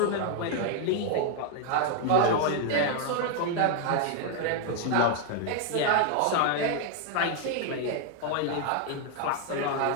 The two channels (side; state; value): both; different; correlation 0.00